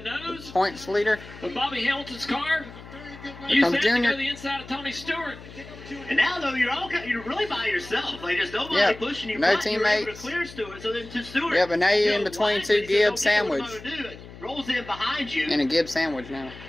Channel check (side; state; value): left; noise; hum, 17 dB below the sound